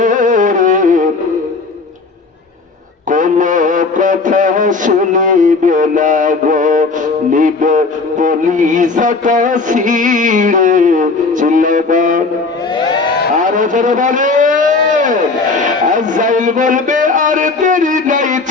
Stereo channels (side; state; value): right; quieter; 4.0 dB